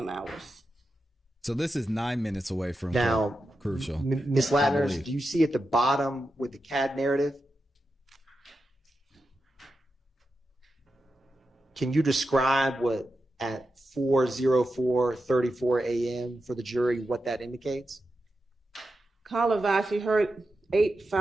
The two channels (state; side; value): normal; both; correlation 0.89